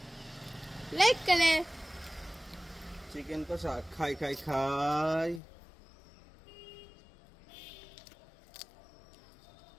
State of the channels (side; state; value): right; drops out; at 5.4 s